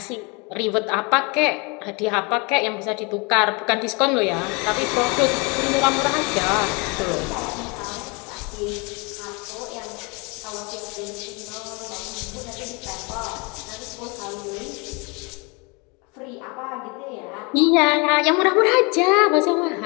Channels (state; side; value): quieter; right; 29.7 dB